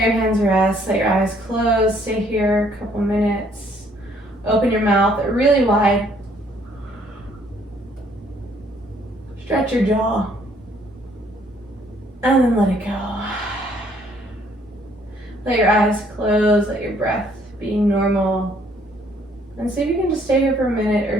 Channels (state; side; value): normal; both; correlation 0.64